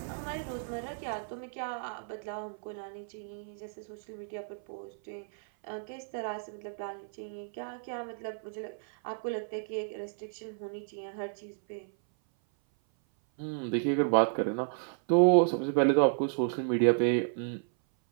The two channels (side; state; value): left; silent; 56 dB below the other